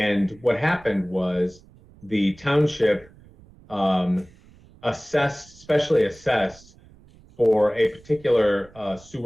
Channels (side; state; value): right; noise; rumble, 26 dB below the sound